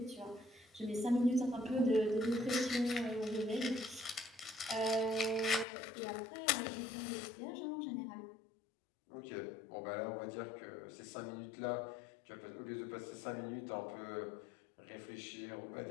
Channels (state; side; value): drops out; right; at 5.7 s